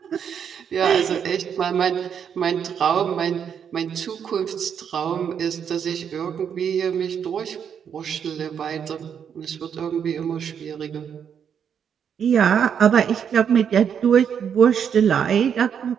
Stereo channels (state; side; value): quieter; left; 7.8 dB